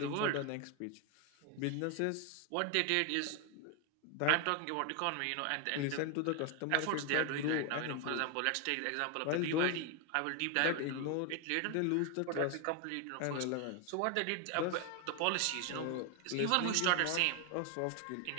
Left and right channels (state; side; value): different; both; correlation 0.01